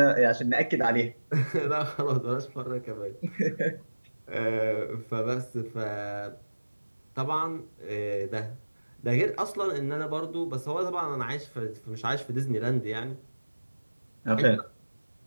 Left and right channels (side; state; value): both; inverted; correlation -1.00